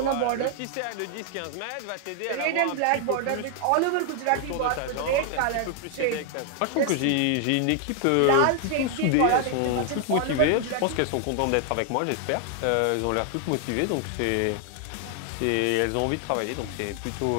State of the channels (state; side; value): different; both; correlation 0.00